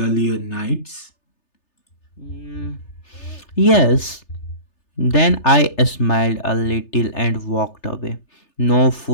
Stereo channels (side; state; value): right; late; 3.3 ms